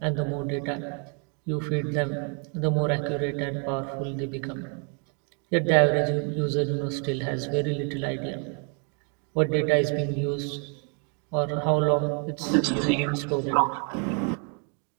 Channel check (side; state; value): left; quieter; 39.0 dB